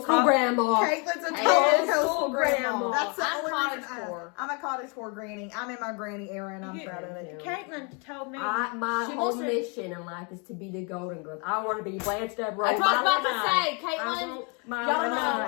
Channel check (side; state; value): right; quieter; 34.1 dB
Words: grandma. Caitlin's a total Coastal coastal grandma. grandma. That's the I'm only cottage reason core. I'm a cottage core granny. I'm in my granny era and I'm You- proud of it. Caitlin told me. My She whole wants to- mission in life is to be the Golden Girls. I want to be Blanche Devereaux. That's what I was about my to say. life. I Caitlin. want my Y'all